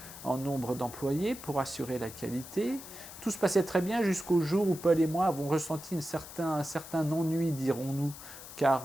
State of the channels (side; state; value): left; noise; hiss, 14 dB below the sound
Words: en nombre d'employés pour assurer la qualité. Tout se passait très bien jusqu'au jour où Paul et moi avons ressenti un certain ennui, dirons-nous,